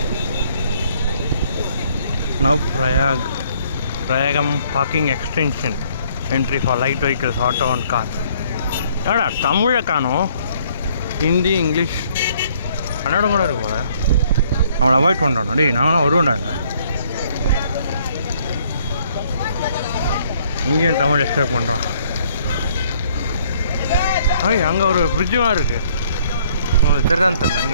Now Prayagam parking extension entry for light vehicles, auto and car. ஏடா தமிழை காணும், ஹிந்தி இங்கிலீஷ் கன்னடம் கூட இருக்கு போல. அவங்கள அவாய்ட் பண்ணுறோம். டேய் நாங்களாம் வருவோண்டாங்க. இங்கேயும் தமிழ் எக்ஸ்பெக்ட் பண்ணுறோம். அங்கே ஒரு பிரிட்ஜும் இருக்குது, உங்களுக்கு தெரியாதுன்னு தெரியல.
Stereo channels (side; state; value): both; inverted; correlation -0.63